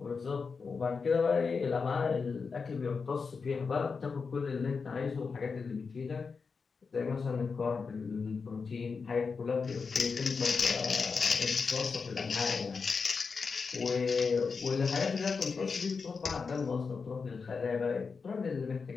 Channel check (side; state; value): right; quieter; 5.1 dB